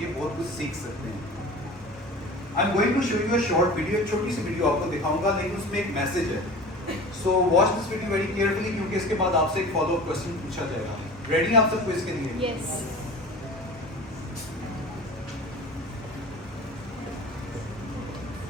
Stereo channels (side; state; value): both; normal; correlation 0.37